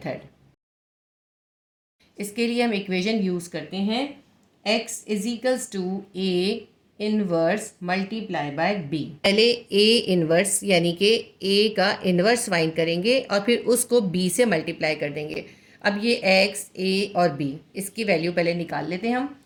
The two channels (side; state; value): both; identical; correlation 1.00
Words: इसके लिए हम इक्वेशन यूज़ करते हैं x is equals to a inverse multiply by b। पहले a इनवर्स यानी कि a का इनवर्स फाइंड करेंगे और फिर उसको b से मल्टीप्लाई कर देंगे। अब ये x, a और b, इसकी वैल्यू पहले निकाल लेते हैं हम,